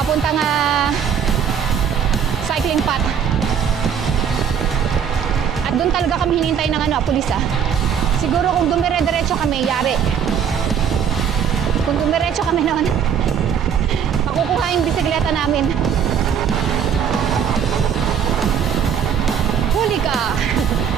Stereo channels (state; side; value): quieter; left; 7.8 dB